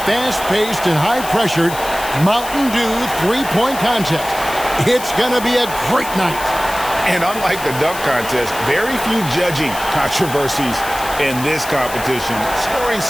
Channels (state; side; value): noise; left; hiss, 12 dB below the sound